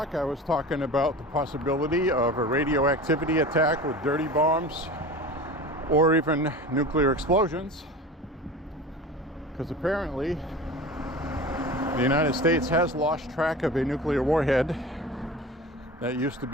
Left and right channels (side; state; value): both; normal; correlation 0.34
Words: I was talking about the possibility of a radioactivity attack with dirty bombs or even nuclear explosions, because apparently the United States has lost track of a nuclear warhead that used to